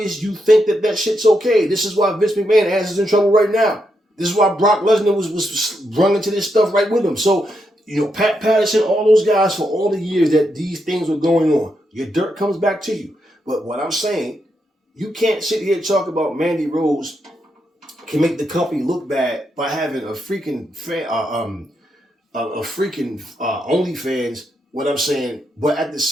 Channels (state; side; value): normal; both; correlation 0.82